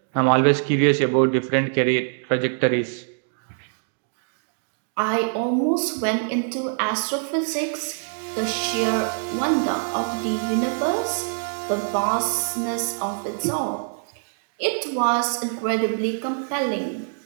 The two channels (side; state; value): left; silent; digital silence